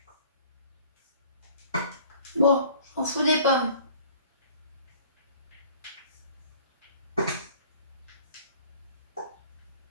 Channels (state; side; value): inverted; both; correlation -0.51